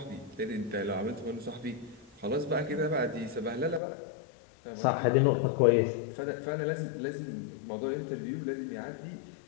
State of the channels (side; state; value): right; drops out; at 3.8 s